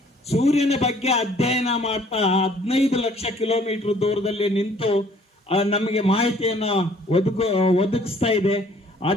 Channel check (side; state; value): both; normal; correlation 0.58